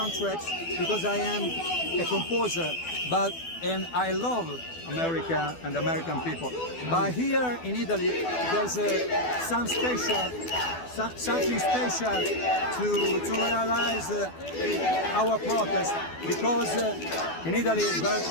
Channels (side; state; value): right; late; 12 ms